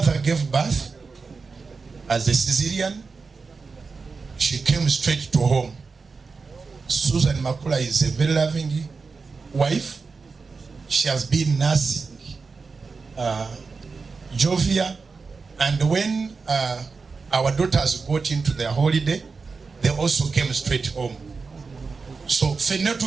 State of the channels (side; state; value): left; quieter; 4.6 dB